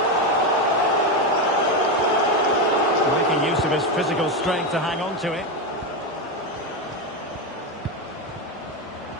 Making use of his physical strength to hang on to it.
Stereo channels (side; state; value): both; normal; correlation 0.12